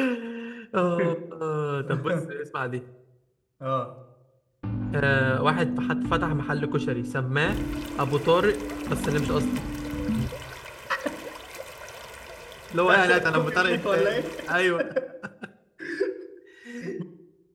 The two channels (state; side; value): identical; both; correlation 1.00